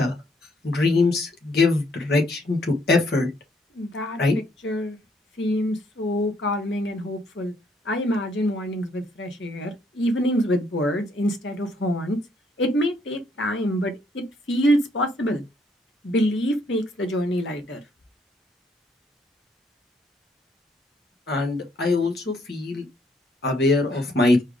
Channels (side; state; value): both; normal; correlation 0.69